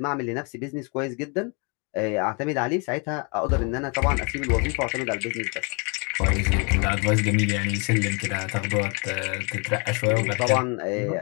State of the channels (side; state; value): right; quieter; 33.7 dB